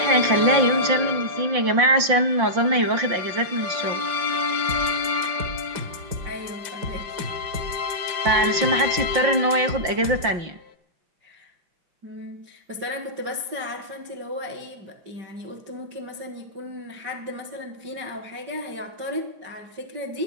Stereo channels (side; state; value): left; late; 5.7 ms